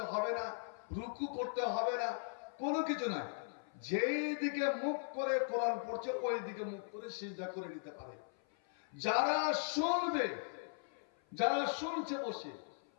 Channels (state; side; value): silent; right; 52 dB below the other